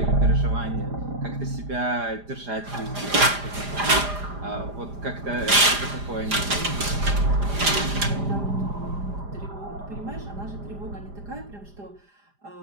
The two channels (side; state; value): left; late; 4.9 ms